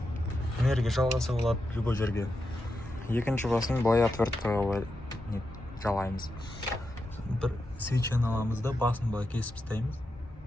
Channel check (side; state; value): both; normal; correlation 0.87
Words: энергия жалғаса болады любой жерге. Екінші басын былай отверткаға жалаймыз. Бір свечаны аламыз да басын былай кесіп тастаймыз.